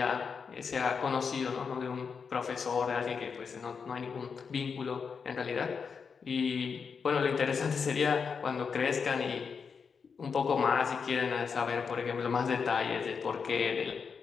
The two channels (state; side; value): quieter; right; 5.9 dB